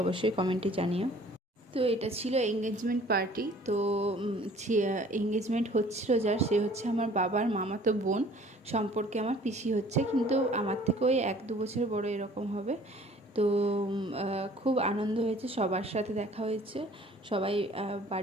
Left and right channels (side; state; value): both; normal; correlation 0.53